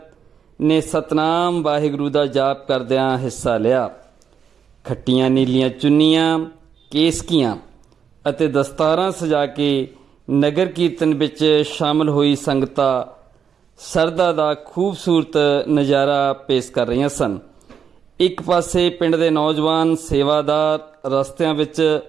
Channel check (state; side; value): quieter; left; 7.4 dB